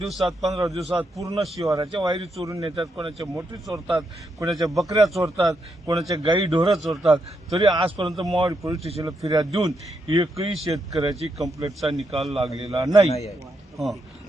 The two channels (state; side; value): normal; both; correlation 0.81